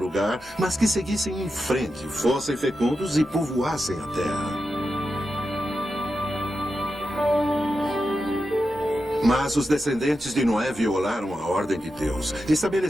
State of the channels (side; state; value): both; normal; correlation 0.89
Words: mas que seguissem em frente, fossem fecundos e povoassem a terra. Mas os descendentes de Noé violaram a ordem de Deus.